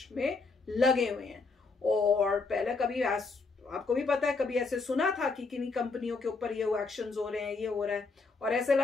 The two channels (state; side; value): quieter; right; 4.1 dB